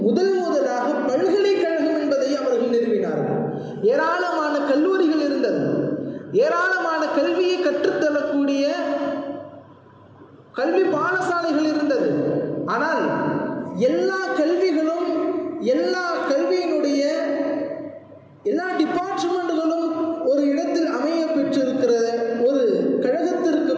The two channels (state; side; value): identical; both; correlation 1.00